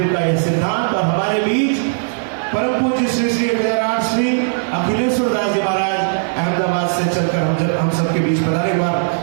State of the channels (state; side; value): silent; left; 59 dB below the other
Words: का यह सिद्धांत। और हमारे बीच परम पूज्य श्री श्री विजयराज श्री अखिलेश्वर दास जी महाराज अहमदाबाद से चलकर हम सबके बीच पधारे। हुआ